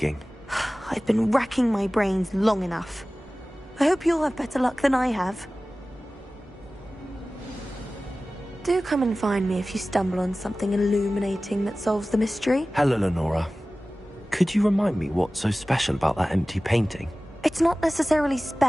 I've been racking my brains long enough. I hope you'll have better luck than I have. Do come and find me if you stumble on something illuminating that solves the mystery. Hello, Lenora. Could you remind me what's so special about that empty painting? It's not necessarily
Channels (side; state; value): both; normal; correlation 0.97